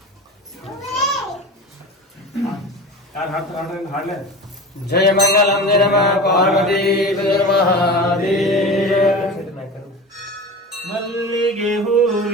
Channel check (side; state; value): both; normal; correlation 0.32